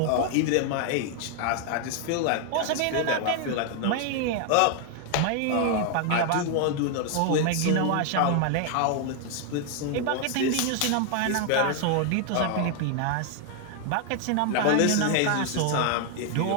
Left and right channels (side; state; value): both; different; correlation 0.00